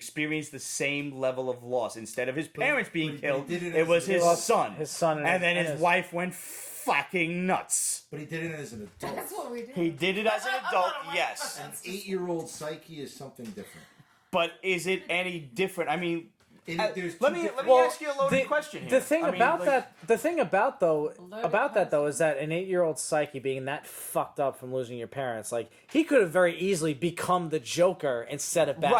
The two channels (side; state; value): both; identical; correlation 1.00